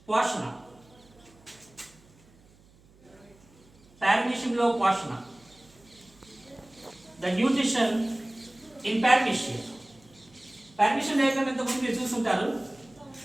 పోషణ, పారమీషియంలో పోషణ, the nutrition in paramecium. Paramecium diagram ఇంతకుముందు మీరు చూసుంటారు,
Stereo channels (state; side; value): noise; right; hum, 28 dB below the sound